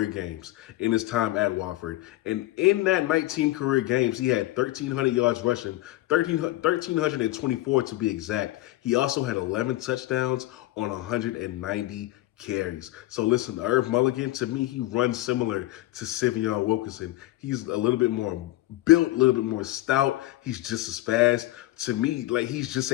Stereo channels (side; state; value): right; quieter; 17.0 dB